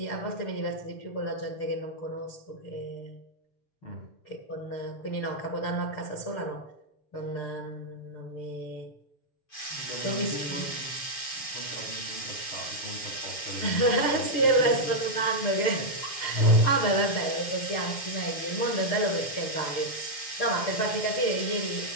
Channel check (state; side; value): late; right; 6.9 ms